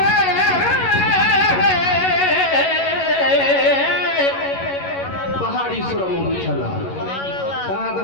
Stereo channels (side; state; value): right; late; 11 ms